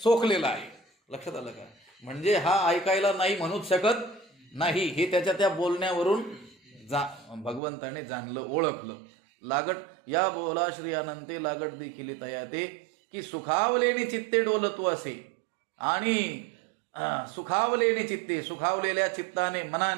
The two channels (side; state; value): left; drops out; at 7.6 s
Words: सोकलेला आहे. लक्षात आलं का? म्हणजे हा ऐकायला नाही म्हणूच शकत नाही, हे त्याच्या त्या बोलण्यावरून भगवंताने जाणलं, ओळखलं. लागट या बोला श्री अनंते लागट देखील तयाते की सुखावलेने चित्ते डोलतू असे. आणि सुखावलेने चित्ते, सुखावलेल्या चित्ताने